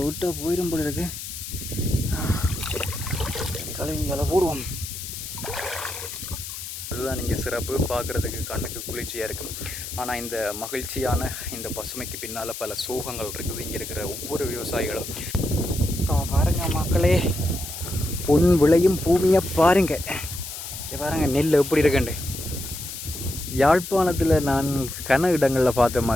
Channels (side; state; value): left; noise; hiss, 9 dB below the sound